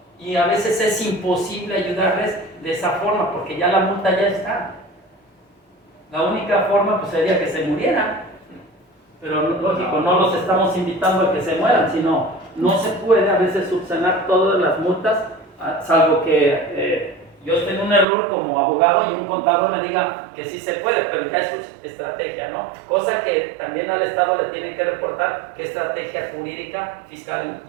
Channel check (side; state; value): left; drops out; at 18.1 s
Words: Y a veces es imposible ayudarles de esa forma, porque ya la multa ya está. La única forma pues sería que se murieran. Pero lógico, no los estamos invitando a que se mueran, sino no se puede a veces subsanar todas las multas, salvo que yo esté en un error como abogado y un contador me diga que sí se puede, pero ya es su estrategia, ¿no? Cosa que también al Estado le tienen que reportar qué estrategia jurídica fiscal